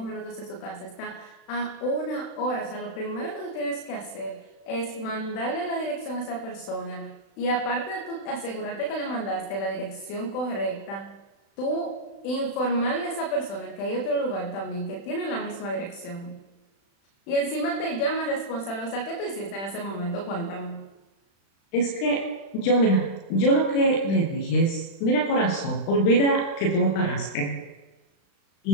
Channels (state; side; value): late; right; 36 ms